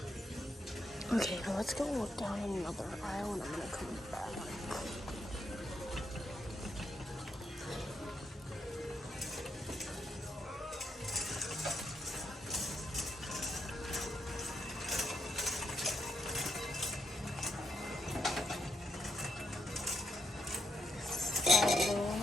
Okay, now let's go look down another aisle and I'm gonna come back.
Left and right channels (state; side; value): normal; both; correlation 0.79